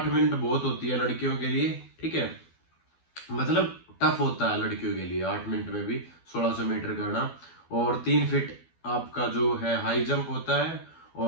मिनट बहुत होती है लड़कियों के लिए, ठीक है। मतलब टफ होता है लड़कियों के लिए 8 मिनट में भी 1600 मीटर करना। और 3 फीट आपका जो है हाई जंप होता है,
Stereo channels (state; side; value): late; right; 12 ms